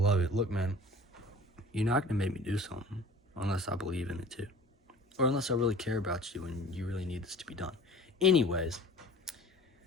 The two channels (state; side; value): normal; both; correlation 0.45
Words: it. Look, man, you're not going to make me do something unless I believe in it too. Or unless I really care about you and you really need this to be done. Anyways,